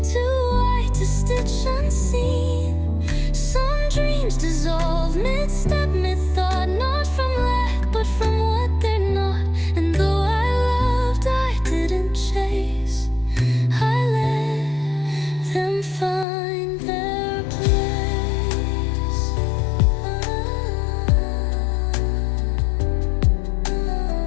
too white to stitch unseen. Some dreams dissolve mid-step, mid-thought. Not from lack, but from what they're not. And though I loved, I didn't chase. I let them find their place.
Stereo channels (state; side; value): drops out; right; at 16.2 s